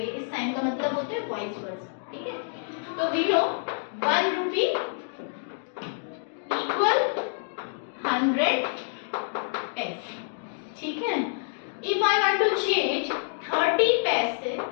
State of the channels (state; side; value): silent; right; digital silence